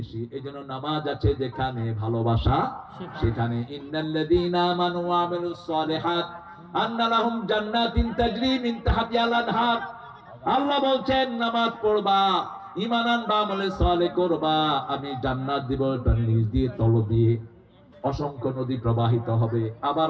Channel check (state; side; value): identical; both; correlation 1.00